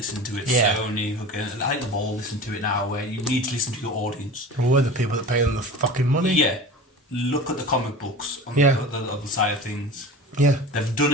to it. Yeah. Sony, I think they've all listened to it now, where you need to listen to your audience. We're the people that pay them the fucking money. Yeah. Look at the comic books on Yeah. the other side of things. Yeah. They've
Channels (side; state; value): both; normal; correlation 0.35